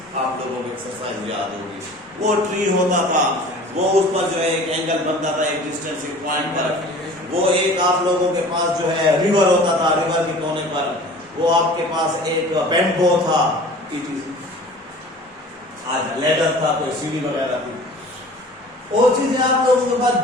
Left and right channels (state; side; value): normal; both; correlation 0.44